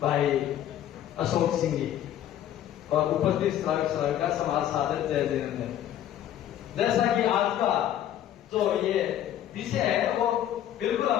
भाई अशोक सिंह जी और उपस्थित श्रावक का समाज सादर जय जयनंदन। जैसा कि आज का जो ये विषय है वो बिल्कुल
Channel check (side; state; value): right; quieter; 11.4 dB